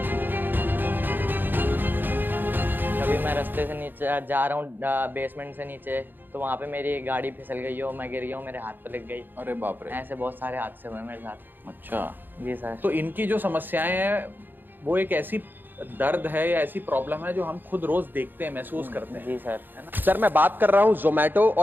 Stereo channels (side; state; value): left; late; 0.092 ms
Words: कभी मैं रास्ते से नीचे जा रहा हूँ, बेसमेंट से नीचे, तो वहाँ पे मेरी गाड़ी फिसल गई हो, मैं गिर गया हूँ, मेरे हाथ पे लग गई। अरे बाप रे। ऐसे बहुत सारे हादसे हुए मेरे साथ। अच्छा, जी सर। तो इनकी जो समस्याएं हैं वो एक ऐसी दर्द है या ऐसी प्रॉब्लम है जो हम खुद रोज देखते हैं, महसूस करते हैं। जी सर। है ना? सर मैं बात कर रहा हूँ जोमेटो